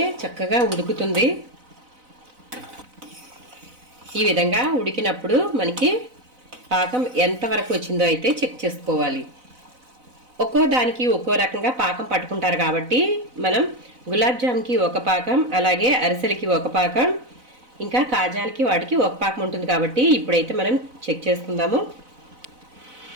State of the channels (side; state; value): left; late; 4.0 ms